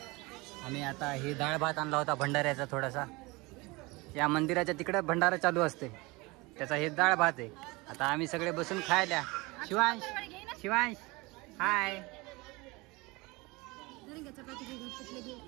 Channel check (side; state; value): left; quieter; 24.1 dB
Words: आम्ही आता हे डाळ भात आणला होता भंडाऱ्याचा थोडासा. या मंदिराच्या तिकडे भंडारा चालू असते त्याचा हे डाळ भात आहे. आता आम्ही सगळे बसून खायला. शिवांश शिवांश हाय.